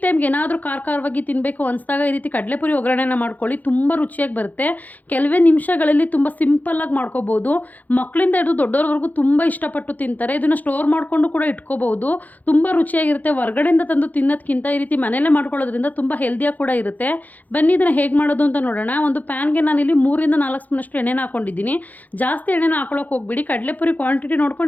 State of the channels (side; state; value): right; late; 0.081 ms